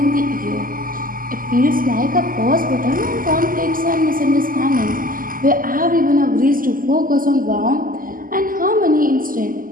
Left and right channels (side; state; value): left; late; 0.41 ms